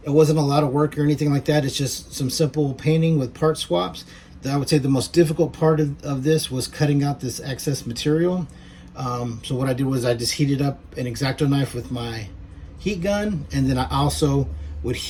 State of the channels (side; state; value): both; identical; correlation 1.00